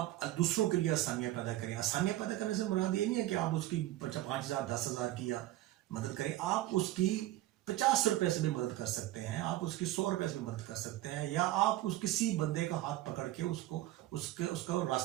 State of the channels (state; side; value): quieter; left; 15.6 dB